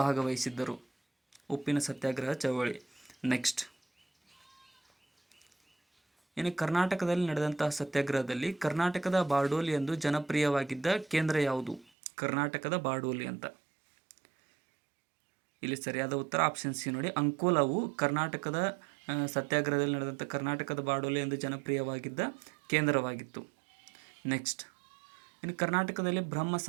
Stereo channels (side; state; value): left; drops out; at 11.9 s